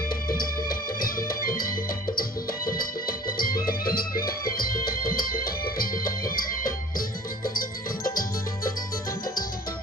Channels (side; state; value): both; normal; correlation 0.47